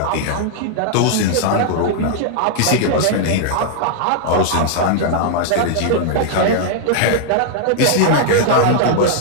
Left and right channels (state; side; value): different; both; correlation -0.01